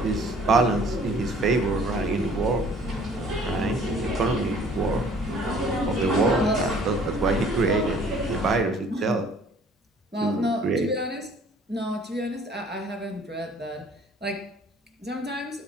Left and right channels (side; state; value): both; normal; correlation 0.54